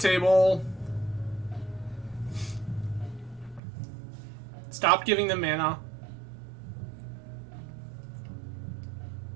Stop giving them mana.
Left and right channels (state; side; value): drops out; left; at 3.6 s